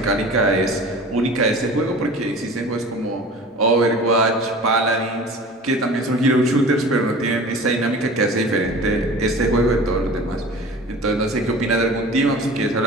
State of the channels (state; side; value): normal; both; correlation 0.40